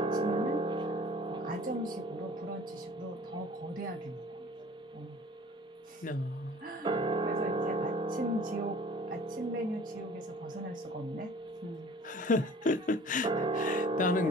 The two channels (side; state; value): both; normal; correlation 0.48